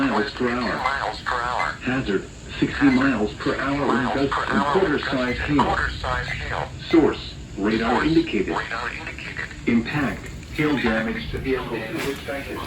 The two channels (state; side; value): identical; both; correlation 1.00